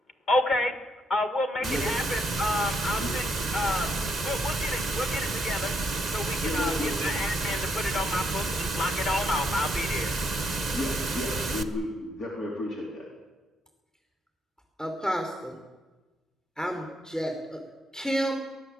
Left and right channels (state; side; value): normal; both; correlation 0.76